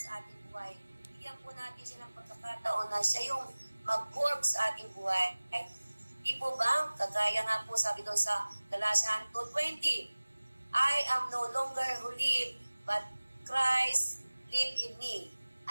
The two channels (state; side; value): inverted; both; correlation -1.00